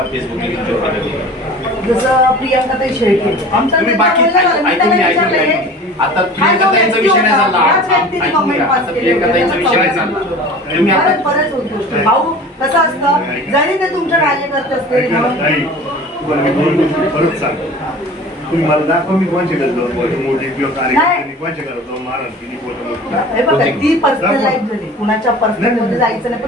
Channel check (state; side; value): normal; both; correlation 0.41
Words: फेसबुकने तुमच्यावर टाकलं? जसं प्रियंकाताई शेळके आमचा तुम्ही नेता बाकी बोलला ना, मी ऐकून त्याला घ्या, विचारलंय, आता हा जो प्रियंकाताईंचा व्यक्ती विषय नाही होता, चालला. याच व्यक्तीने ऐकून comment घ्या, pass आता केले प्रियंकाताईंचा होते. विषय नाही चालला. तुम्ही आता बरंच बऱ्याच गोष्टी. भाऊ कसं असतं, जरी ते तुमच्या कार्यकर्ते असतील म्हणून परत सांग तुम्ही मला दाखवा मी कोणच्या घरात जाऊन मोठी किंवा कार्यकर्त्यांनी कोणच्या घरात जाऊन मारण केली फोटो हे बघा, ती पर्सनल लाईफ झाली, कुणाच्या पर्सनल मध्ये जायचं नाही,